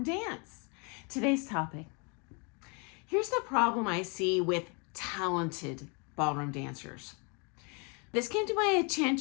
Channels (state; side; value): quieter; right; 34.1 dB